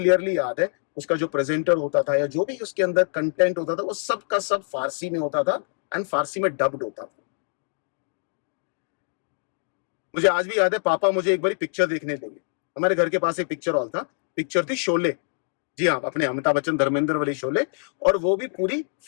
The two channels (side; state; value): right; silent; digital silence